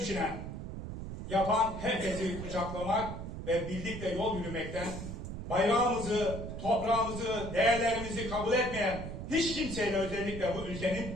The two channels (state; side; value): noise; right; rumble, 7 dB below the sound